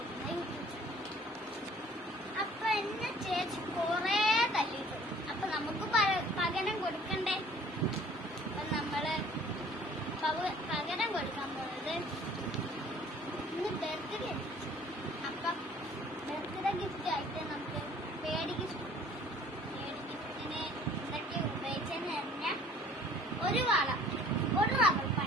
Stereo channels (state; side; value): normal; both; correlation 0.53